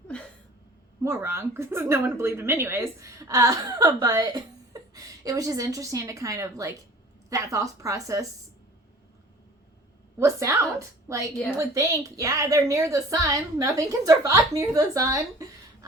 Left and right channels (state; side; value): normal; both; correlation 0.46